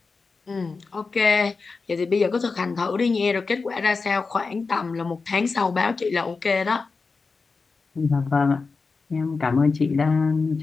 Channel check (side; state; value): right; quieter; 4.4 dB